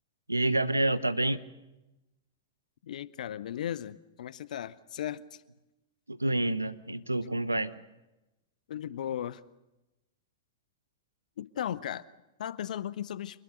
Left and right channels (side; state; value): both; inverted; correlation -0.83